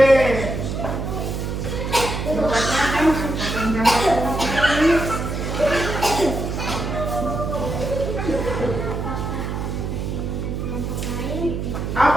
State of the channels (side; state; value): right; noise; hum, 3 dB below the sound